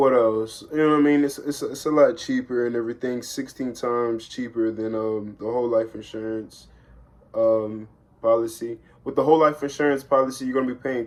else? You know what I mean? It's a lot cheaper and everything. 16 times cheaper than the whole life insurance policy. With the whole life insurance policy, you're going to be paying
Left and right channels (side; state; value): both; identical; correlation 1.00